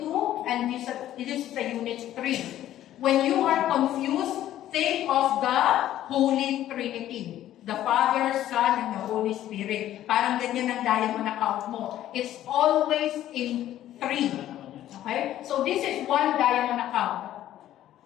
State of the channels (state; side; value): quieter; right; 12.7 dB